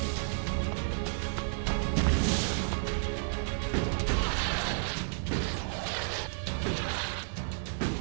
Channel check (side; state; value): left; silent; digital silence